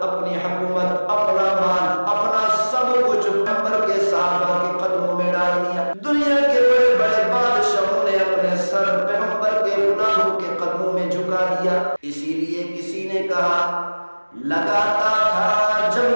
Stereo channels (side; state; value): both; inverted; correlation -1.00